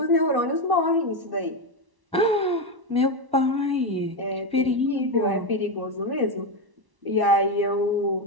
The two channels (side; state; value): left; late; 1.1 ms